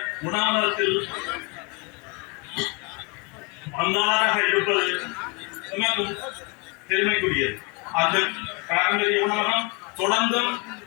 உணவகத்தில் பங்காளராக இருப்பது மிகவும் பெருமைக்குரியது. அந்த பாரம்பரிய உணவகம் தொடர்ந்தும்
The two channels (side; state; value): right; quieter; 31.2 dB